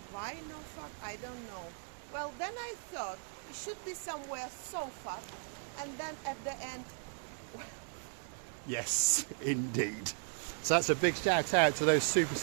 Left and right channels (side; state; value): left; silent; 53 dB below the other